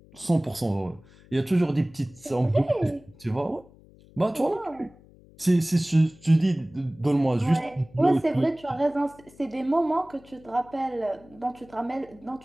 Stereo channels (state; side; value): noise; left; hum, 25 dB below the sound